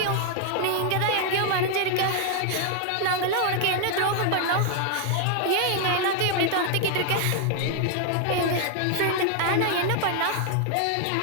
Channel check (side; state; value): both; different; correlation 0.00